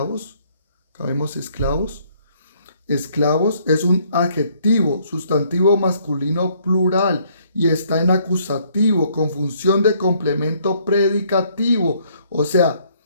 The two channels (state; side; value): inverted; both; correlation -0.65